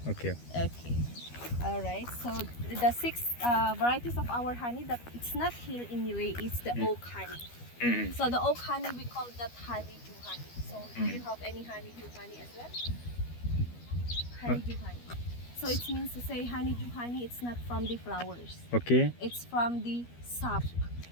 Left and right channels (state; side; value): late; right; 12 ms